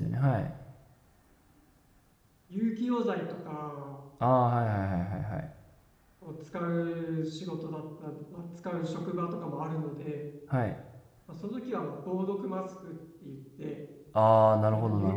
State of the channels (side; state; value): both; identical; correlation 1.00